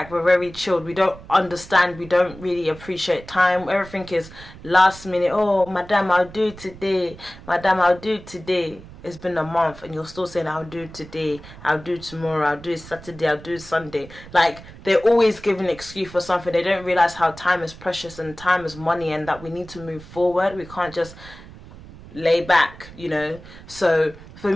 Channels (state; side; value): noise; right; rumble, 18 dB below the sound